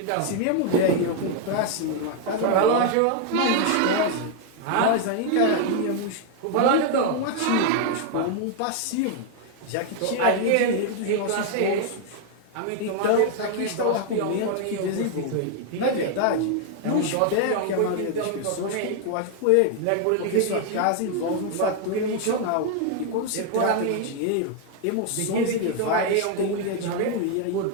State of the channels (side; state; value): both; different; correlation 0.00